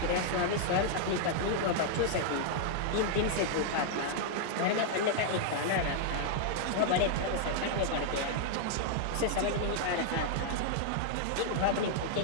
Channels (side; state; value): both; different; correlation -0.01